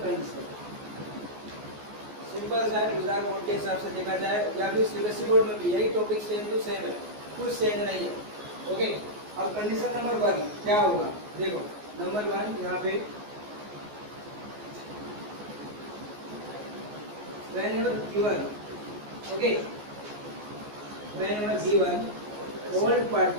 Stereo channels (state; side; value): late; left; 14 ms